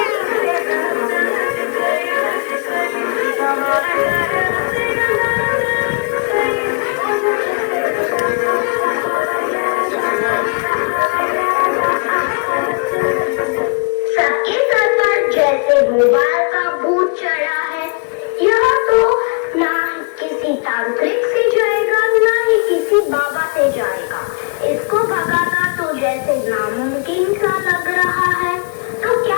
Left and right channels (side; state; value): right; quieter; 37.5 dB